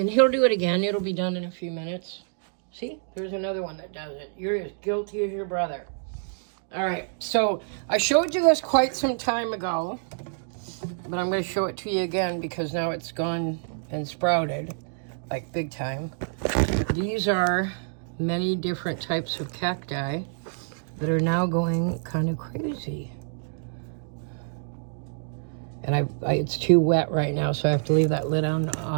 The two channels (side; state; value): left; silent; digital silence